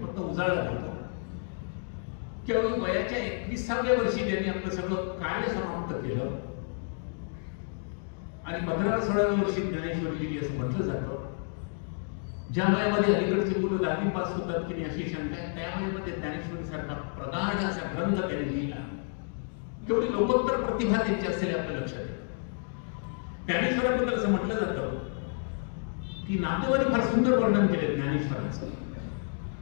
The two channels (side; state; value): right; silent; 58 dB below the other